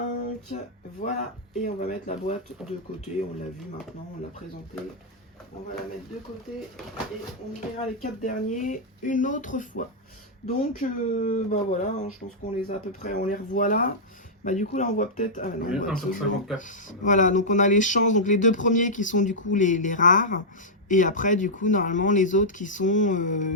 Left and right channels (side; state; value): both; normal; correlation -0.09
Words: Voilà. Et on va mettre la boîte de côté. On l'a vu maintenant, on l'a présenté. On va la mettre de côté et on verra les 4 derniers une autre fois. Donc, bah voilà, hein, je pense qu'on les a à peu près, on les revoit là. Bah du coup là on voit peut-être... Ah, non, 1 sur 54. Voilà, donc on a les chances, donc les 2 premiers qui sont du coup les rares. Et après du coup normalement les autres qui sont